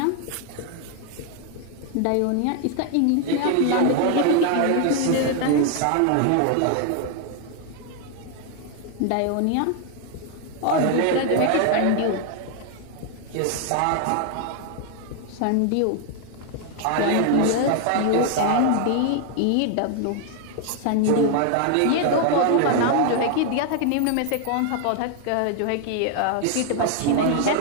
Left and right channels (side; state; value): both; different; correlation 0.00